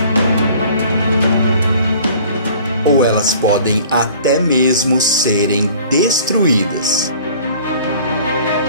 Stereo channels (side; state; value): both; inverted; correlation -0.50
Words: Ou elas podem até mesmo serem destruídas.